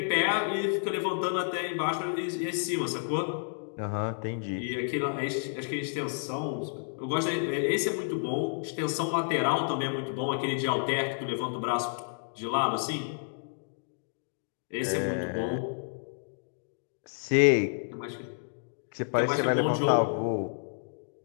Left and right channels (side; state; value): right; silent; digital silence